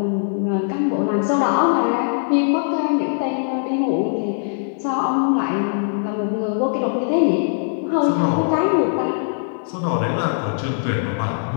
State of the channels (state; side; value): silent; right; digital silence